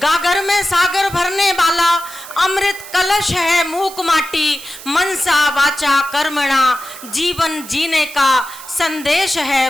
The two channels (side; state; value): right; noise; hiss, 15 dB below the sound